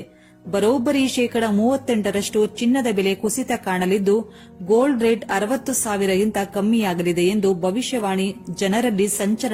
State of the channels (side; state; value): both; identical; correlation 1.00